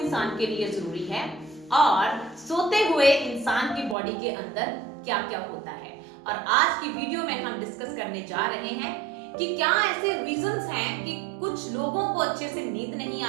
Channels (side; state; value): left; drops out; at 4.0 s